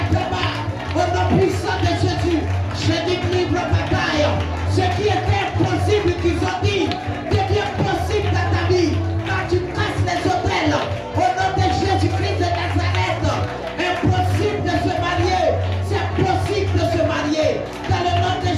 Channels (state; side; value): identical; both; correlation 1.00